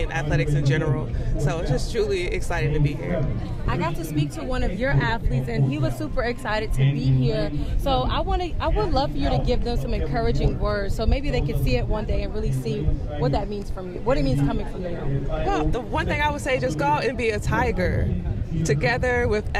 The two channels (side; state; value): both; identical; correlation 1.00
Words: and athletics in general. So it's just truly exciting to be here. I got to speak to one of your athletes, and he was super excited to be here. So I would love for you to give them some encouraging words, so maybe they could see it one day and really see what that means from you, what it means coming from you. Well, the one thing I would say, just go out and be a tiger, together with